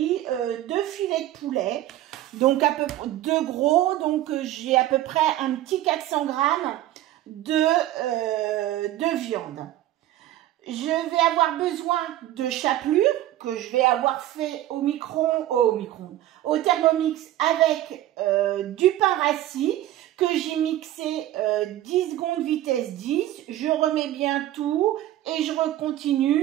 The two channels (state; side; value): quieter; left; 13.9 dB